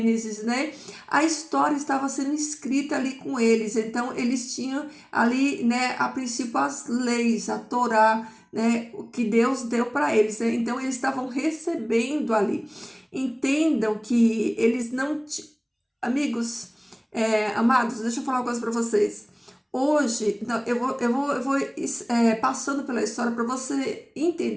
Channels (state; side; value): identical; both; correlation 1.00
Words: né? A história estava sendo escrita ali com eles, então eles tinham ali, né? A princípio as leis, a Torá, né? O que Deus deu para eles, né? Então eles estavam recebendo ali. Entendam que eles não, amigos, amados, deixa eu falar uma coisa para vocês. Hoje, não, eu vou passando pela história para você